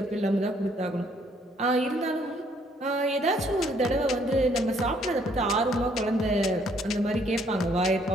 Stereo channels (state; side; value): normal; both; correlation 0.66